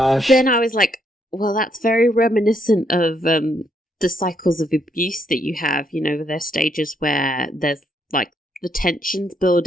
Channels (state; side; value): normal; both; correlation 0.74